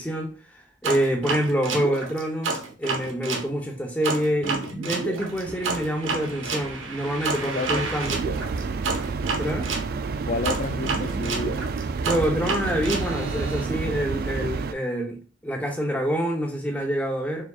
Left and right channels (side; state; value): both; normal; correlation 0.61